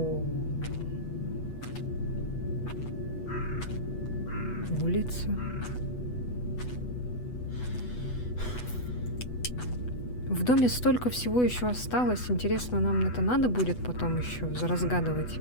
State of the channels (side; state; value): right; late; 8.1 ms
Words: Улица. В доме столько всего еще осталось. Интересно, нам это надо будет потом еще разгадывать.